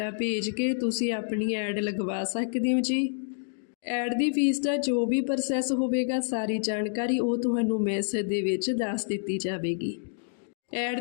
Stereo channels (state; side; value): silent; right; digital silence